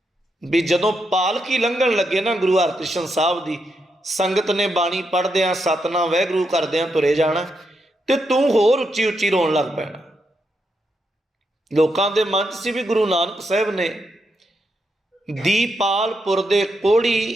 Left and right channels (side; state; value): both; normal; correlation 0.82